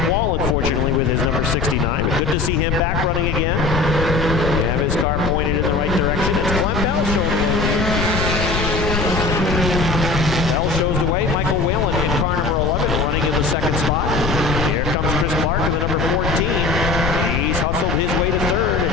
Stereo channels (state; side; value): noise; left; rumble, 2 dB below the sound